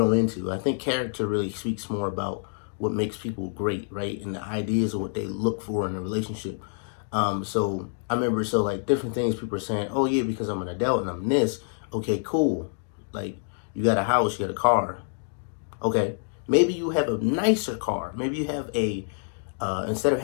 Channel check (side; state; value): right; silent; digital silence